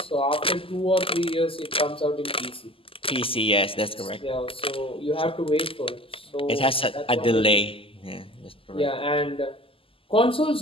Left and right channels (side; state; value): right; late; 0.26 ms